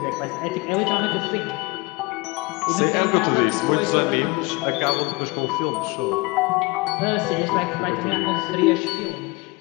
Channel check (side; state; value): right; quieter; 25.1 dB